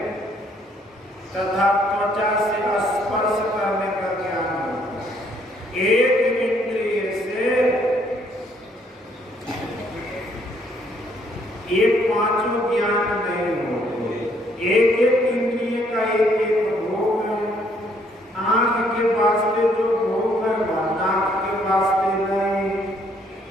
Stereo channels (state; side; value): normal; both; correlation 0.67